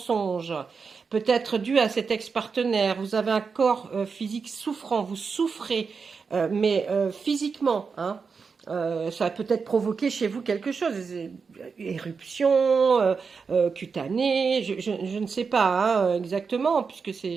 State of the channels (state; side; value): quieter; left; 5.3 dB